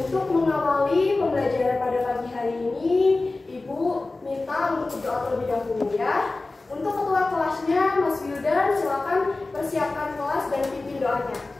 mengawali pembelajaran pada pagi hari ini, Ibu minta untuk berdoa terlebih dahulu ya. Untuk ketua kelasnya, Mas Wildan, silakan persiapkan kelas dan pimpin doanya.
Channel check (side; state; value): right; quieter; 3.3 dB